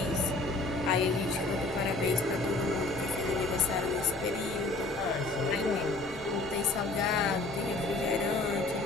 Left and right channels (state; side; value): quieter; right; 3.1 dB